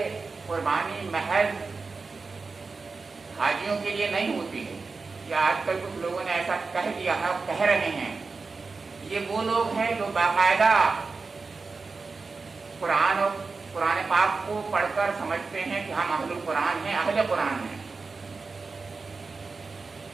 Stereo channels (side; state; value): left; quieter; 4.3 dB